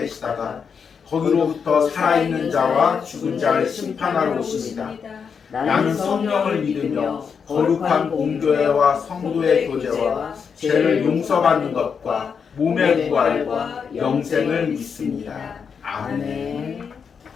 거기로부터 살아있는 자와 죽은 자를 심판하러 오십니다. 나는 성령을 믿으며 거룩한 공교회와 성도의 교제와 죄를 용서받는 것과 몸의 부활과 영생을 믿습니다. 아멘.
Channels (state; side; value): quieter; right; 6.3 dB